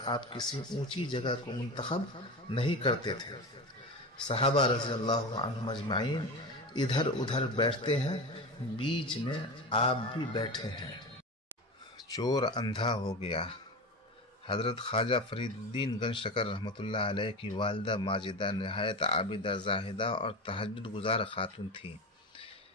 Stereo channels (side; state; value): both; normal; correlation 0.25